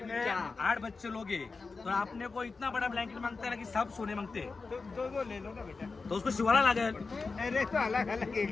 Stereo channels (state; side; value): quieter; right; 4.3 dB